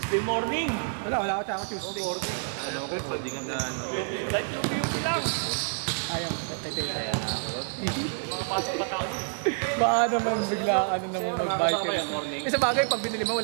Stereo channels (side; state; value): left; silent; digital silence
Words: Tuesday morning. Wala ako tsaka Tuesday. Ano ko, pwede ka na ano. Ayaw, tayo. Baka naman bigla ano naman mag-biker. Sa bagay, pag binili mo,